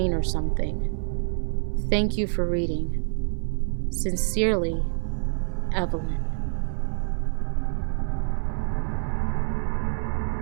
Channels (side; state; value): left; silent; 61 dB below the other